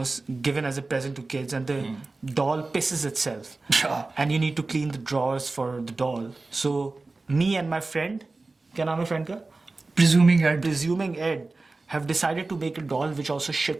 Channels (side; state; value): left; quieter; 3.4 dB